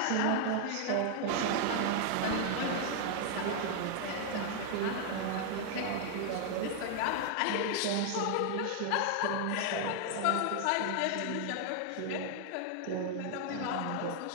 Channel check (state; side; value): different; both; correlation 0.00